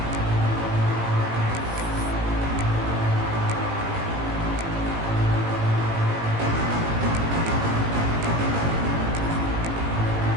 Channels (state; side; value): late; left; 18 ms